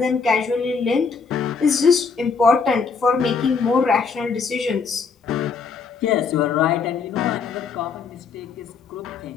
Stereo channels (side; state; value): right; quieter; 5.3 dB